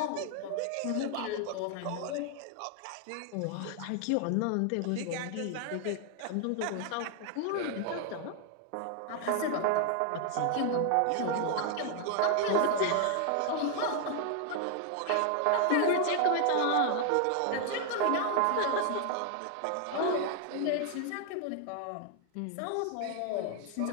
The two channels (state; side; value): different; both; correlation 0.00